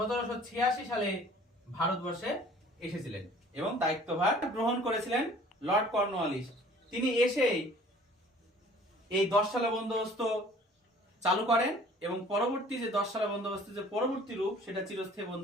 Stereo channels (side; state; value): both; normal; correlation 0.51